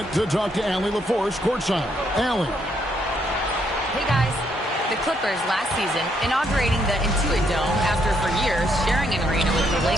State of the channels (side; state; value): both; normal; correlation 0.73